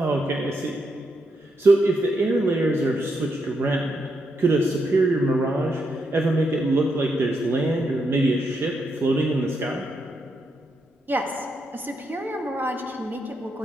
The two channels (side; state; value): both; normal; correlation 0.81